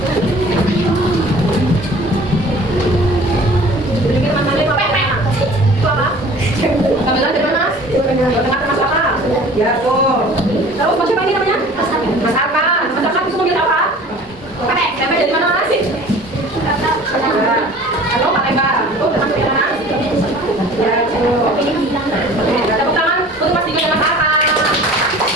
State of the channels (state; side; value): normal; both; correlation 0.46